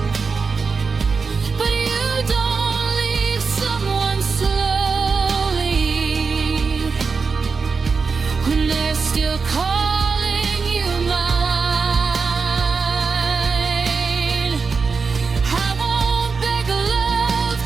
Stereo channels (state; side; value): quieter; left; 4.9 dB